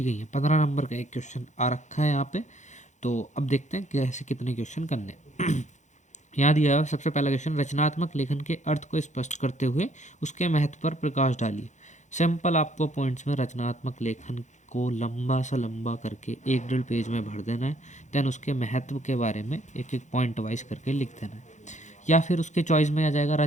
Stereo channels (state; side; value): late; right; 0.35 ms